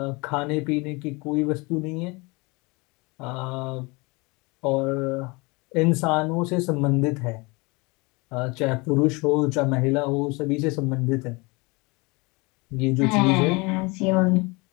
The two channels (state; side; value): quieter; right; 26.6 dB